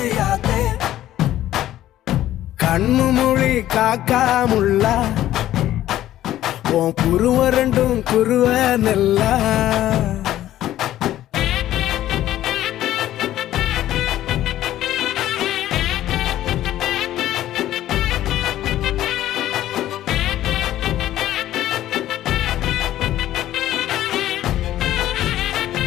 கண்ணு மொழி காக்காமுள்ள உன் குருவ ரெண்டும் குருவ நெல்லா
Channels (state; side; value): quieter; right; 13.3 dB